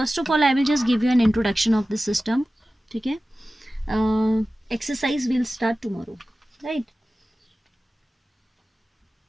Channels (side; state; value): both; normal; correlation 0.96